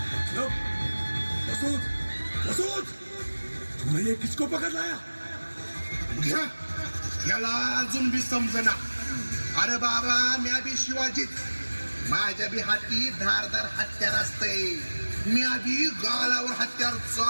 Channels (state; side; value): inverted; both; correlation -1.00